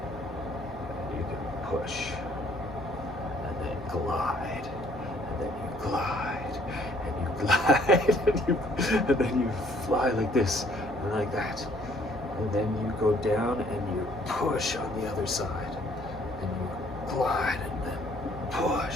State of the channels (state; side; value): normal; both; correlation 0.62